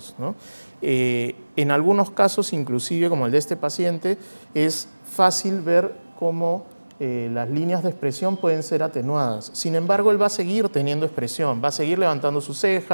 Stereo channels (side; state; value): both; inverted; correlation -1.00